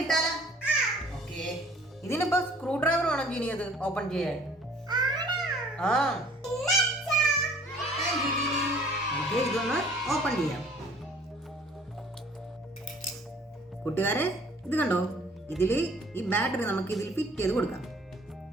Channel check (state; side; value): normal; both; correlation 0.54